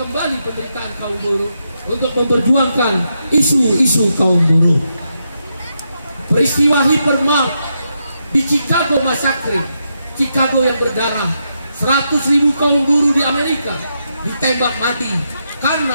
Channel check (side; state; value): both; inverted; correlation -0.83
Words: penderitaan kaum buruh untuk memperjuangkan isu-isu kaum buruh. Peristiwa Hypermart di Chicago Massacre, Chicago yang berdarah, 100.000 kaum buruh di Amerika ditembak mati